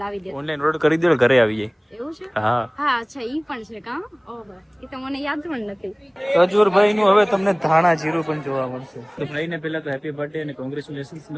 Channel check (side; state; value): both; identical; correlation 1.00